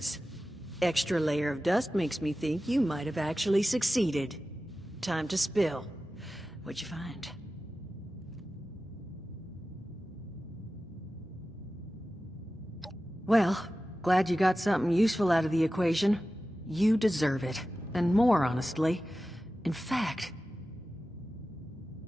Extra layer of dust makes me think you might have actually succeeded. Time to spill. What'd you find? Well, glad you got something useful out of the equation. You deserve it. And more, honestly. In fact,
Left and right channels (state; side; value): normal; both; correlation 0.94